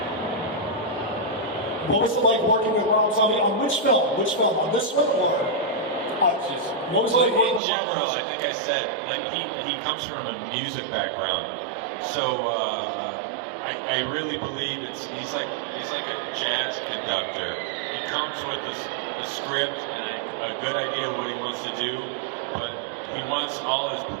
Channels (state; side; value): drops out; left; at 7.6 s